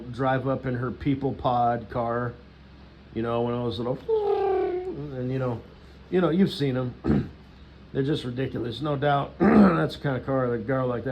drive up in her people pod car, one of those little, and you've seen them. They're just ridiculous, no doubt. That's the kind of car that a girl like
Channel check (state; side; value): identical; both; correlation 1.00